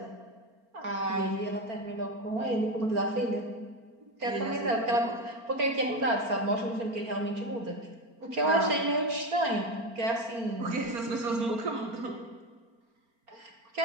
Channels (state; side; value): late; left; 4.4 ms